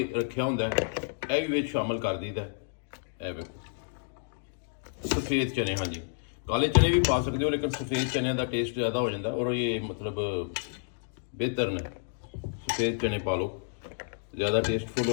ਰੱਖਿਆ ਹੁੰਦਾ ਹੈ, ਇਹ ਵੀ ਵਿੱਚ ਸ਼ਾਮਲ ਕਰ ਦਈਦਾ। ਇਹ ਵੇਖੋ ਸਫੇਦ ਚਨੇ, ਹਾਂਜੀ ਕਾਲੇ ਚਨੇ ਵੀ ਪਾ ਸਕਦੇ ਹੋ, ਲੇਕਿਨ ਸਫੇਦ ਚਨਿਆਂ ਦਾ ਟੇਸਟ ਜ਼ਿਆਦਾ ਹੋ ਜਾਂਦਾ ਔਰ ਇਹ ਮਤਲਬ ਬਿਹਤਰ ਨੇ। ਸਫੇਦ ਚਨੇ ਪਾ ਲਓ, ਜ਼ਿਆਦਾ ਟੇਸਟਫੁਲ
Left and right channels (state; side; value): silent; right; digital silence